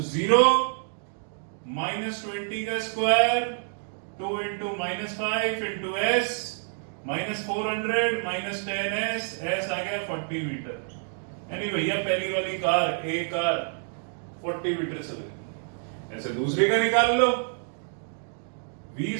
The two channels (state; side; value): silent; left; 55 dB below the other